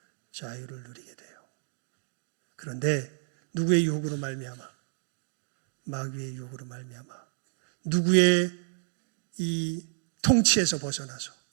자유를 누리게 돼요. 그런데 누구의 유혹으로 말미암아? 마귀의 유혹으로 말미암아 누구의 이 통치에서 벗어나서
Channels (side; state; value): left; silent; digital silence